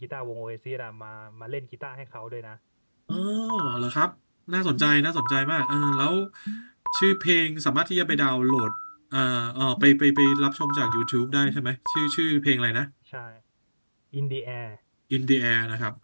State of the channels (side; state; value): both; inverted; correlation -1.00